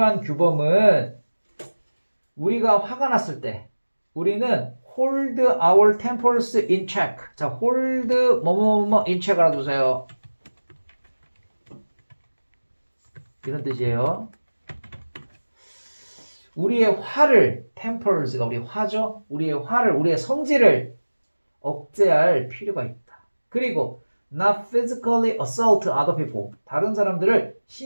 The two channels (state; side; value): inverted; both; correlation -1.00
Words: 규범은 우리가 화가 났을 때 우리는 hold our tempers in check. 자, hold in check 알아두세요. 이런 뜻이에요. 우리의 화를, tempers가 우리 화죠. 우리의 화를, 우리의 성질을 억제할 필요가 있다. 그리고 not physically assault other people. 다른 사람들을